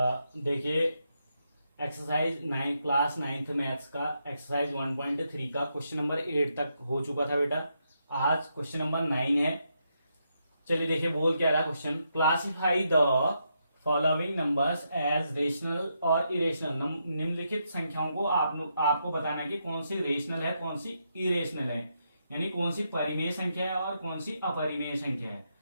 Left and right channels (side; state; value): both; inverted; correlation -0.81